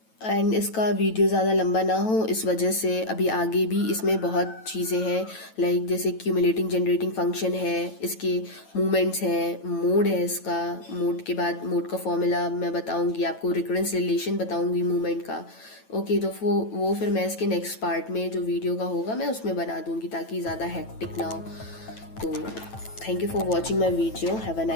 एंड इसका वीडियो ज़्यादा लंबा ना हो इस वजह से अभी आगे भी इसमें बहुत चीज़ें हैं, लाइक जैसे क्यूमुलेटिंग जनरेटिंग फंक्शन है, इसके मूवमेंट्स हैं, मोड है इसका, मोड के बाद मोड का फॉर्मूला मैं बताऊंगी आपको, रिकरेंस रिलेशन बताऊंगी मूवमेंट का। ओके, तो वो फिर मैं इसके नेक्स्ट पार्ट में जो वीडियो का होगा मैं उसमें बना दूंगी ताकि ज़्यादा हेक्टिक ना हो। तो thank you for watching my video, have a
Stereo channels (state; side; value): late; right; 9.1 ms